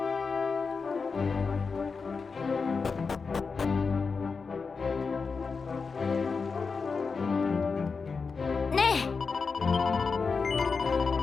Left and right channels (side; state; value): right; quieter; 4.9 dB